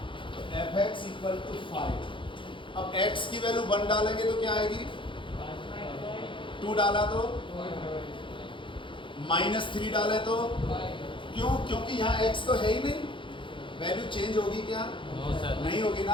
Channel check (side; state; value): right; late; 0.24 ms